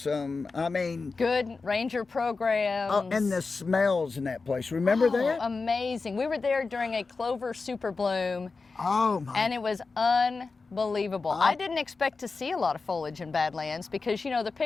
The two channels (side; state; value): right; quieter; 4.2 dB